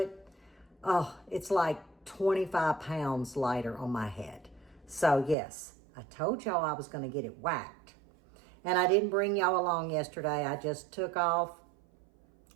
it. Oh, it's like 25 pounds lighter on my head. So yes, I told y'all I was going to get it whacked. And I didn't bring y'all along yesterday. I just took off,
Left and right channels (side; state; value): left; drops out; at 5.4 s